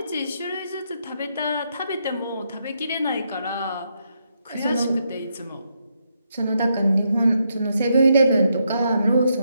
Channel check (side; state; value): both; inverted; correlation -0.79